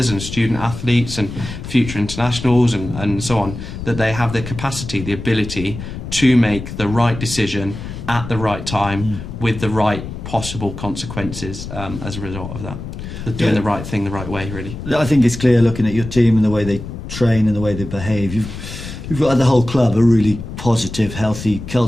and student athletes and future internationals and so on, that they have the capacity, the ability to make the right decision at the right time with the right possible consequences as a result of that. Doing the right thing the right way, really. I think it's clear, looking at your team and the way they train and the way they behave, you've got the whole club a really positive, healthy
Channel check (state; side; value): noise; left; rumble, 9 dB below the sound